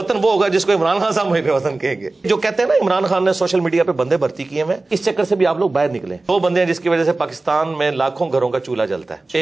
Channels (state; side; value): quieter; left; 3.2 dB